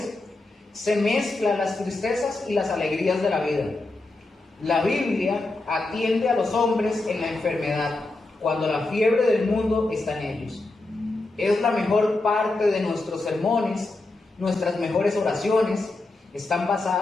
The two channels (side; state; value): right; quieter; 3.1 dB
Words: se mezclan las tristezas y las alegrías de la vida. La Biblia atiende a los hombres en la enfermedad, cuando la fiebre del mundo está en ellos. Es la mejor parte de nuestros sermones, nuestras mejores oraciones están